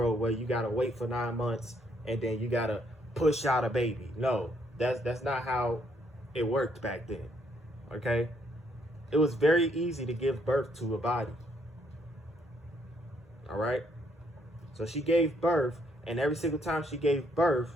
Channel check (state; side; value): normal; both; correlation 0.70